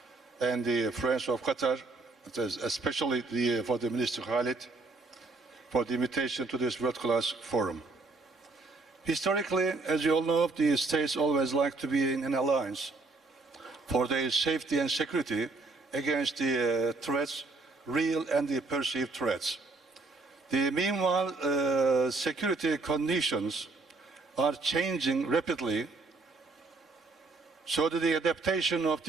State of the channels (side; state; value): left; quieter; 3.6 dB